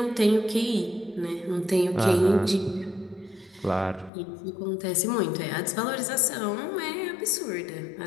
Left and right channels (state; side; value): drops out; right; at 4.1 s